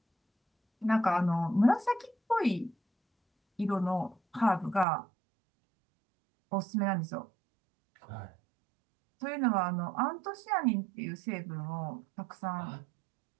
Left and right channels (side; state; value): left; drops out; at 4.9 s